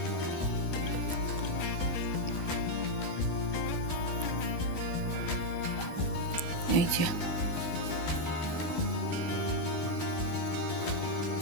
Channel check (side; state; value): right; late; 12 ms